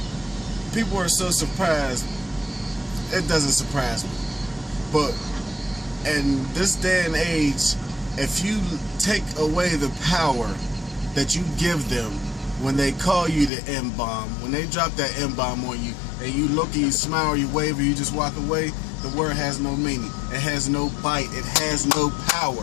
people are so surprised. It doesn't surprise me. But in this day and age, if you take away the power that you give them when they call you the M-bomb, when they drop that M-bomb on you, and you look and you smile or you wave or you just walk away, the word has no meaning. It has no bite. It has no power.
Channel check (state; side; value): drops out; right; at 13.5 s